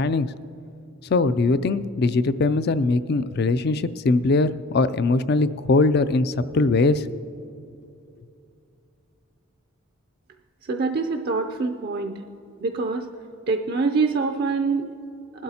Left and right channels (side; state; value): both; normal; correlation 0.43